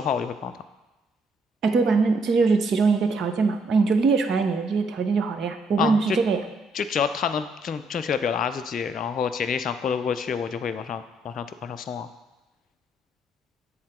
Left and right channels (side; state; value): both; normal; correlation 0.72